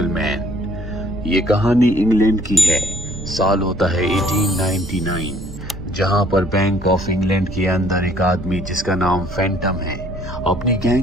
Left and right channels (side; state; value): right; noise; rumble, 12 dB below the sound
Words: ये कहानी इंग्लैंड की है। साल होता है 1899, जहां पर बैंक ऑफ इंग्लैंड के अंदर एक आदमी जिसका नाम फैंटम है अपनी